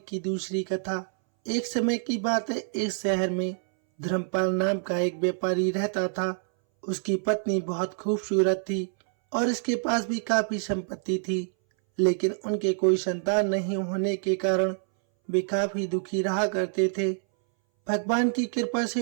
दूसरी कथा। एक समय की बात है, एक शहर में धर्मपाल नाम का एक व्यापारी रहता था। उसकी पत्नी बहुत खूबसूरत थी और इसके पास भी काफी संपत्ति थी, लेकिन उनके कोई संतान नहीं होने के कारण वे काफी दुखी रहा करते थे। भगवान की कृपा से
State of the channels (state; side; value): silent; left; 60 dB below the other